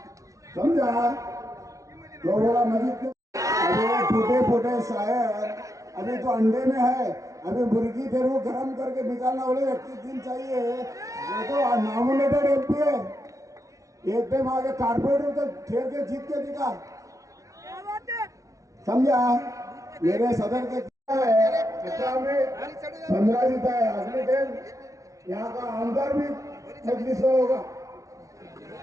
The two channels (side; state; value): left; late; 0.16 ms